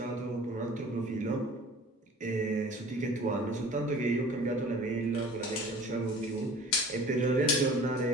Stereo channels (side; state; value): both; normal; correlation 0.45